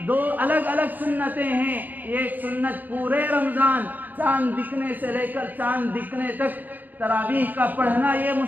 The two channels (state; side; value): late; left; 0.084 ms